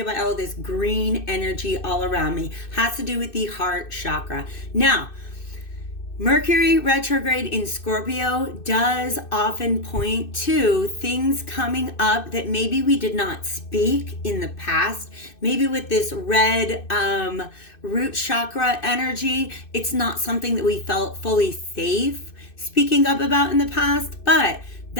by all this green energy all around me. Has to do with the heart chakra. Now, Mercury retrograde in Scorpio does often point to things coming up that maybe we did not speak in the past. Maybe with this red root chakra energy, it's not something that we felt fully safe speaking up about in the past, but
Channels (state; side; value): late; right; 2.6 ms